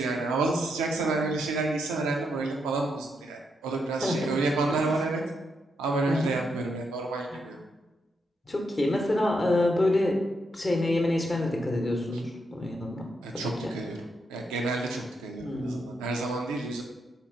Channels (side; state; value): both; normal; correlation 0.81